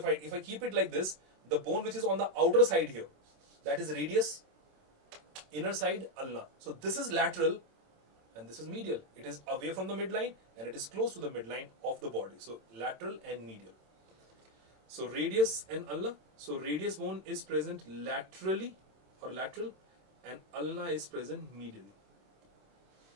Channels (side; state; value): left; late; 27 ms